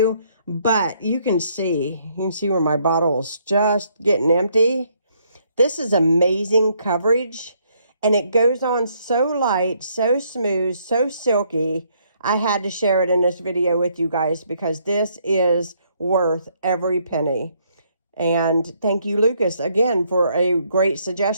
But you can see where my bottle's just getting empty. This is amazing coverage, and it goes on so light, so smooth, so silky. I had to share it in this video with you guys because this is worth every penny. And thank you, Lucas, again, for a great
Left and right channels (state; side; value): inverted; both; correlation -0.70